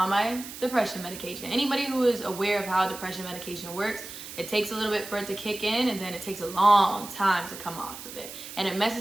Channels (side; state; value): right; noise; hiss, 12 dB below the sound